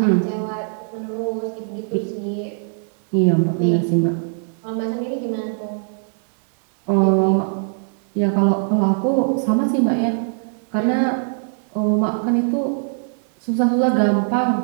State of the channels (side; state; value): left; silent; digital silence